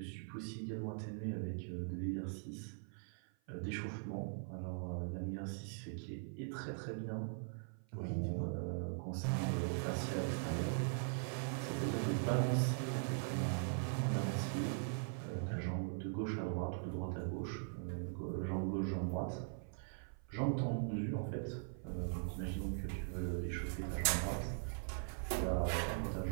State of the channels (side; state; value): left; silent; 50 dB below the other